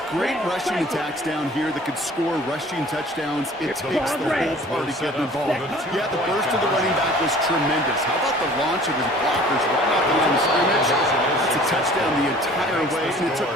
great rushing attacks down here that could score rushing touchdowns, it takes the whole party getting involved. Yeah, the burst of the running back was tremendous. How about the launch of his blockers right off the line of scrimmage? That's a touchdown the entire way, and it took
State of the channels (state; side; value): normal; both; correlation 0.49